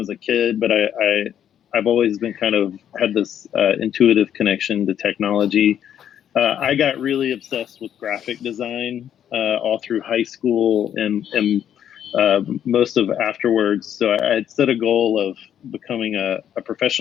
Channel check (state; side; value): quieter; right; 9.8 dB